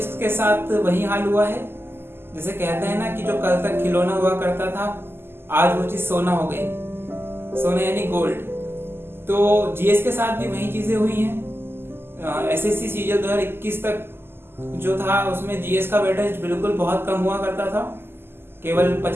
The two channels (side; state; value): left; late; 0.11 ms